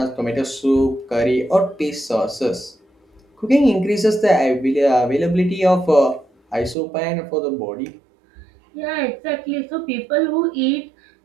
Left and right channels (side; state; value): left; drops out; at 6.8 s